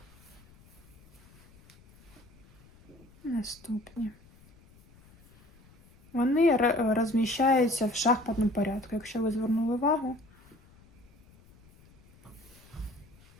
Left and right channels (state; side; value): noise; left; rumble, 26 dB below the sound